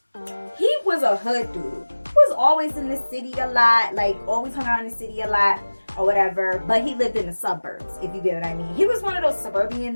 He was a hood dude. He was always in the city a lot. Like, always hung out in the city a lot or whatever. But he lived in the suburbs, if you get what I mean. He was one of those suburban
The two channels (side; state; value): both; inverted; correlation -1.00